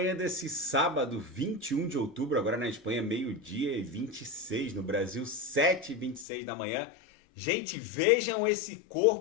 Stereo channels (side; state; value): right; drops out; at 6.2 s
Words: desse sábado, 21 de outubro. Agora na Espanha, meio-dia e 26. No Brasil, 7h26 da manhã. Gente, vejam esse